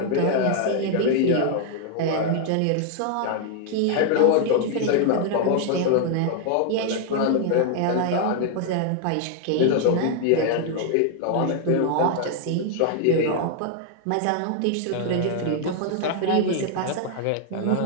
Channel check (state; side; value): different; both; correlation 0.00